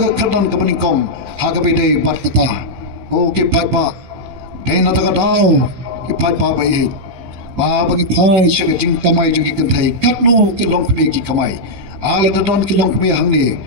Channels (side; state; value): left; late; 16 ms